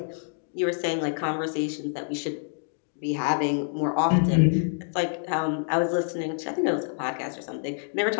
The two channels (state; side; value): silent; right; digital silence